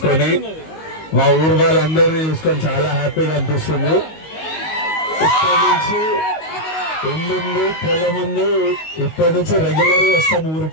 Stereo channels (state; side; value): late; right; 19 ms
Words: మా ఊరు వాళ్ళందరినీ చూసుకొని చాలా హ్యాపీగా అనిపిస్తుంది. ఇప్పటి నుంచి ఇల్లుంది, పొలం ఉంది, ఇప్పటి నుంచి రెగ్యులర్ వస్తాం